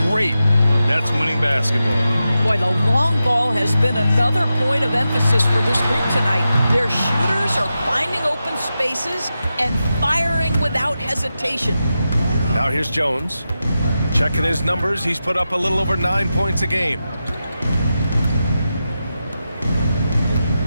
great. That's winning basketball. Boy, the long ball has been another point of emphasis for this group tonight. Their shooters are finding open spaces and firing without hesitation. Now here's Jones. Checking his numbers, he's put up a little over 9 points a game.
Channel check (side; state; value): both; inverted; correlation -0.91